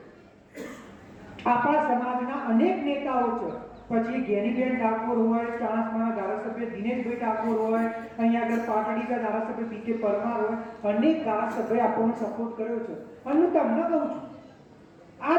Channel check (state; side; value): identical; both; correlation 1.00